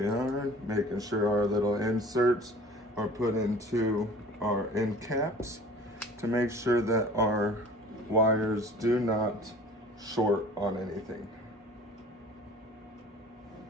we are, making sure our little inserts are put into our end caps to make sure that our wires do not short on anything.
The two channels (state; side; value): normal; both; correlation 0.46